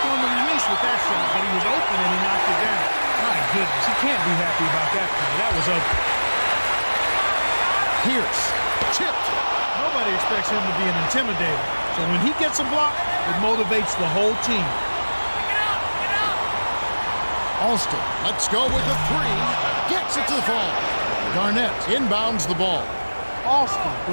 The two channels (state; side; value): inverted; both; correlation -1.00